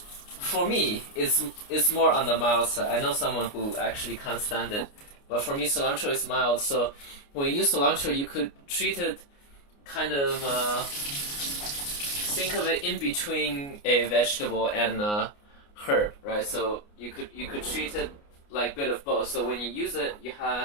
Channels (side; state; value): right; late; 29 ms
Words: for me, it's more on the mild side. I know someone who actually can't stand it, but for me cilantro is mild. So when you use cilantro, you could treat it kind of, think of it in between a vegetable and herb, right? So you could treat it like a bit of both. So when you use it, you